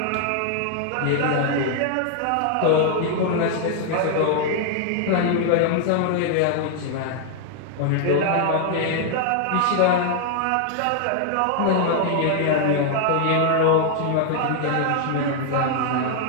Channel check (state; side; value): different; both; correlation 0.00